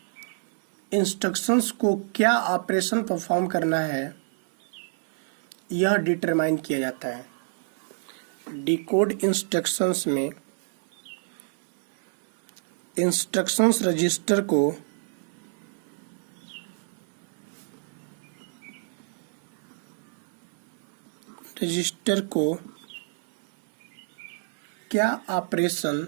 इंस्ट्रक्शंस को क्या ऑपरेशन परफॉर्म करना है यह डिटरमाइन किया जाता है। डिकोड इंस्ट्रक्शंस में इंस्ट्रक्शंस रजिस्टर को क्या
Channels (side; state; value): left; silent; 60 dB below the other